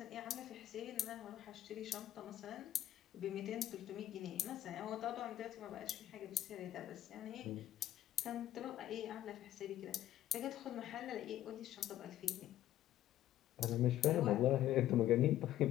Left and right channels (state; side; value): quieter; right; 13.0 dB